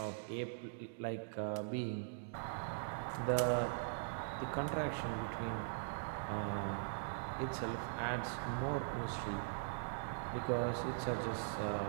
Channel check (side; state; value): left; silent; digital silence